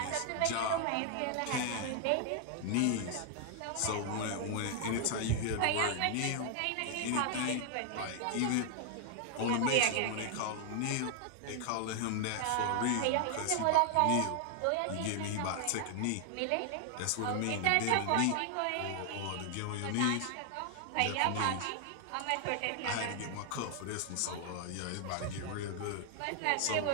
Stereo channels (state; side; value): different; both; correlation 0.00